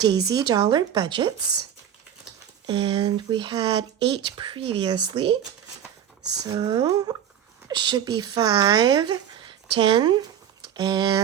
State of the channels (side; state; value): left; quieter; 9.5 dB